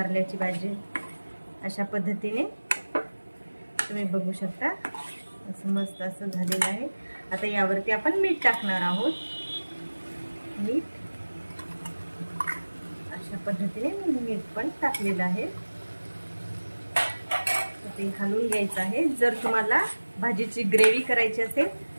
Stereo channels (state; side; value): inverted; both; correlation -1.00